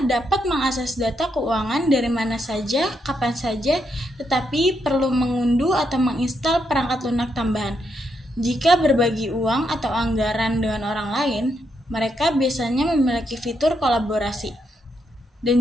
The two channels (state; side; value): normal; both; correlation 0.79